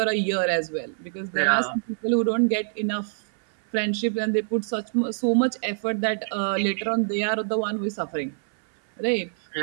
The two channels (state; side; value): silent; left; 62 dB below the other